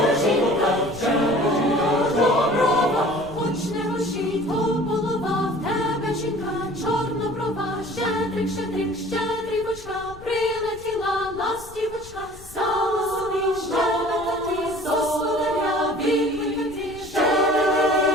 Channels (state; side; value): noise; left; rumble, 19 dB below the sound